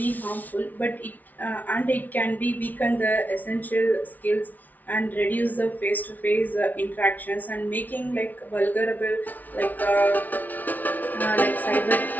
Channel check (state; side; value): late; right; 0.079 ms